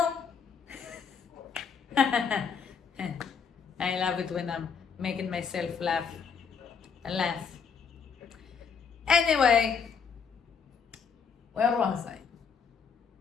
I love it when I'm making myself laugh. Anyway, where was I?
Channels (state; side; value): quieter; right; 6.3 dB